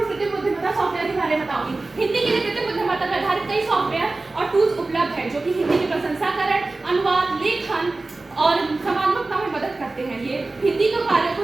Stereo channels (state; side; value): quieter; left; 3.3 dB